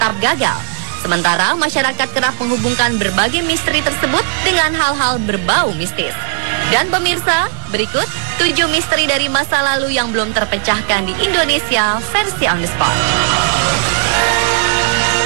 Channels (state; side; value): silent; left; digital silence